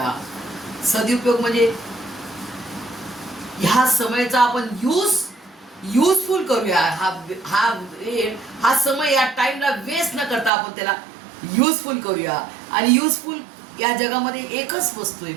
सदुपयोग म्हणजे ह्या समयाचा आपण युजफुल करूया. हा समय या टाइमला वेस्ट न करता आपण त्याला युजफुल करूया. आणि युजफुल या जगामध्ये एकच वस्तू आहे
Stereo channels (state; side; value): drops out; left; at 10.5 s